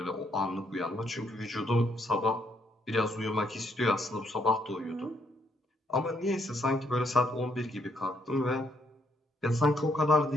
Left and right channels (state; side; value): normal; both; correlation 0.73